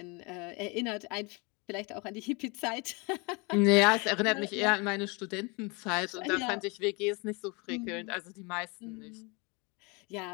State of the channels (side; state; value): right; quieter; 29.3 dB